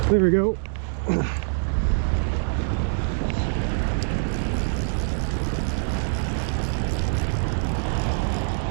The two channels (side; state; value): left; silent; 62 dB below the other